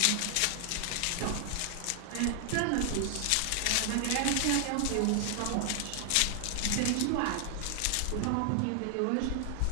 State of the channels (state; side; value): different; both; correlation 0.00